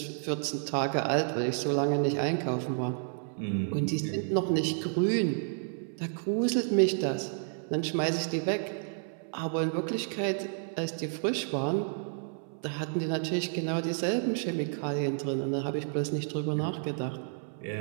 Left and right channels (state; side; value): silent; left; 57 dB below the other